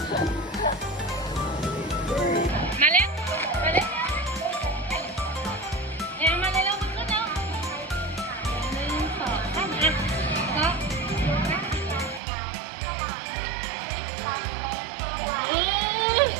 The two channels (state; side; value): drops out; left; at 12.2 s